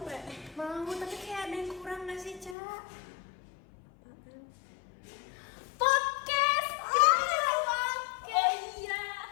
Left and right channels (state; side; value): drops out; right; at 2.6 s